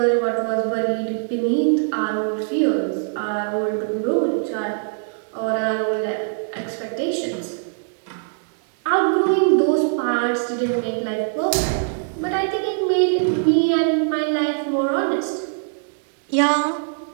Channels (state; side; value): silent; left; digital silence